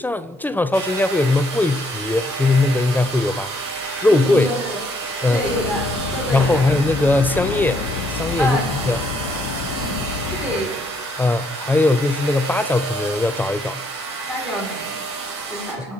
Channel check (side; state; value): both; normal; correlation 0.71